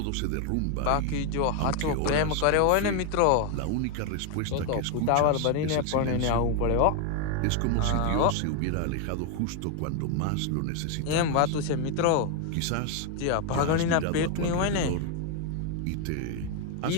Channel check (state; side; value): different; both; correlation 0.01